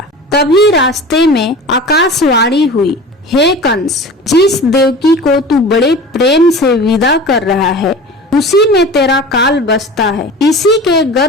तभी रास्ते में आकाशवाणी हुई, हे कंस, जिस देवकी को तू बड़े प्रेम से विदा कर रहा है, उसी में तेरा काल बसता है। इसी के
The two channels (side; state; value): both; normal; correlation 0.37